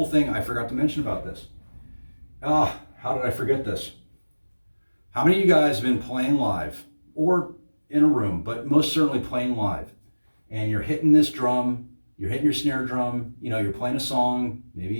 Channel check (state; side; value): inverted; both; correlation -1.00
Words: thing I forgot to mention about this. How did I forget this? How many of you guys have been playing live or in a room, but most certainly playing live, and you're hitting this drum, you're hitting your snare drum, you know, you're playing a song,